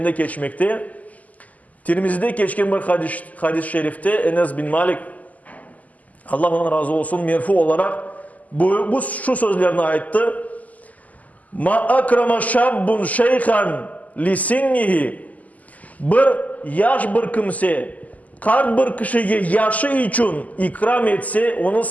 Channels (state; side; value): late; right; 0.076 ms